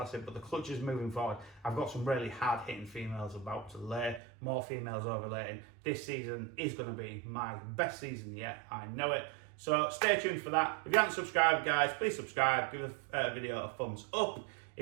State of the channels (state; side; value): drops out; left; at 4.2 s